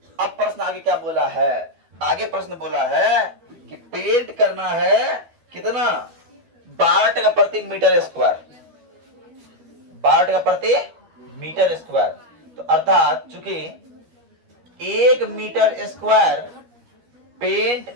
अब प्रश्न आगे क्या बोला है, आगे प्रश्न बोला है कि पेंट करना है कितना 12 टका प्रति मीटर स्क्वायर, 12 टका प्रति मीटर स्क्वायर। तो अर्थात चूंकि 1 मीटर स्क्वायर पेंट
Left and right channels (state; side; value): late; left; 12 ms